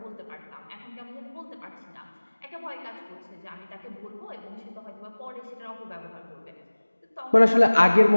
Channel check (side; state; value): both; inverted; correlation -1.00